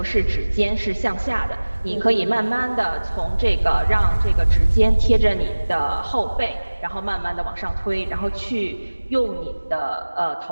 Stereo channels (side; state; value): both; inverted; correlation -1.00